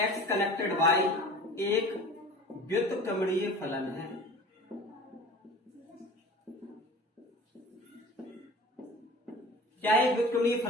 connected y एक व्युत्क्रमणीय फलन है। क्या एक व्युत्क्रमणीय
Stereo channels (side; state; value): both; normal; correlation 0.40